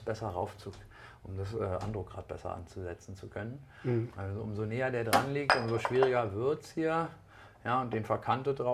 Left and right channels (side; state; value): both; identical; correlation 1.00